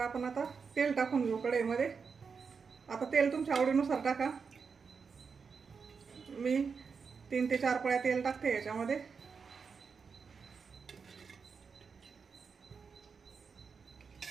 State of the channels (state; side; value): quieter; left; 5.6 dB